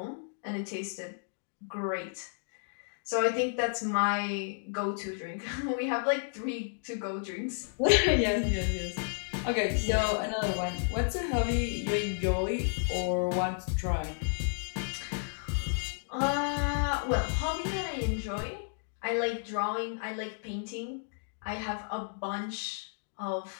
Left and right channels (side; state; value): right; silent; digital silence